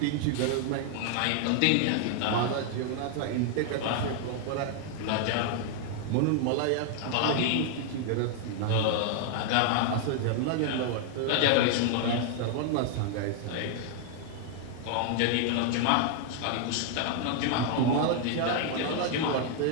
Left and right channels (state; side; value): different; both; correlation 0.00